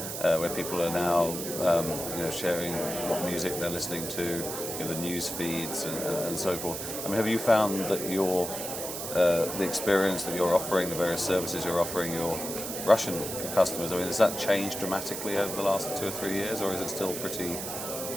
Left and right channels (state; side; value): noise; right; hiss, 6 dB below the sound